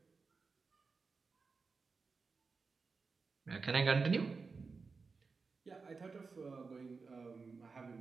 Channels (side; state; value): left; quieter; 4.6 dB